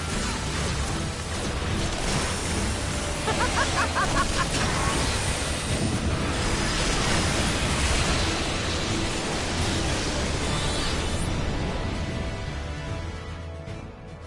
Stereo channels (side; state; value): both; identical; correlation 1.00